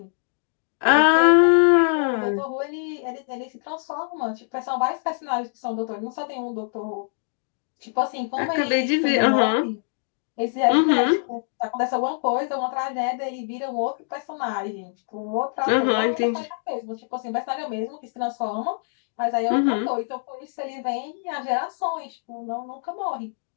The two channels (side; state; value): right; silent; digital silence